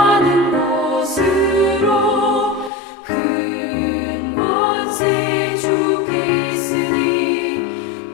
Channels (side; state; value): right; drops out; at 2.7 s